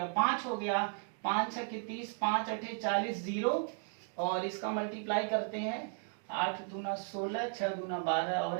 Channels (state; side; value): silent; left; 54 dB below the other